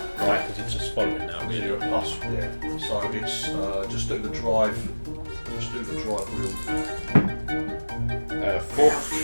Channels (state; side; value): inverted; both; correlation -1.00